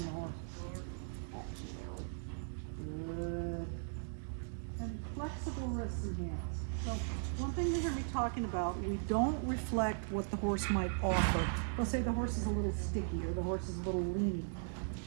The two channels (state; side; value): silent; left; digital silence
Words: the horse. Good. And flexible wrists and hands. So one thing you hear me talking about, we don't reflect what the horse might offer. They'll say the horse is a little sticky or the horse is a little lean.